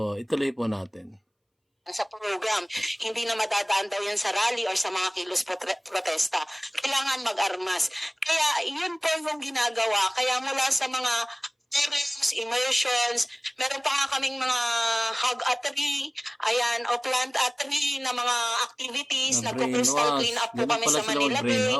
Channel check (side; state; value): both; identical; correlation 1.00